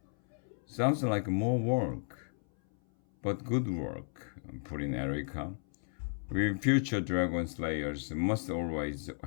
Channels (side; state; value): right; silent; 55 dB below the other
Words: "Sounds like more work." "But good work," put in Erica. "We future dragon slayers must always